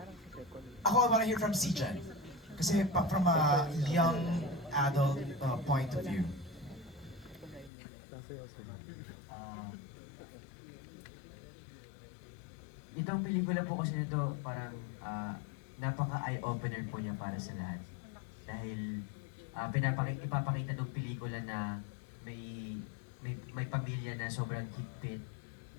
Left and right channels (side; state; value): right; drops out; at 7.7 s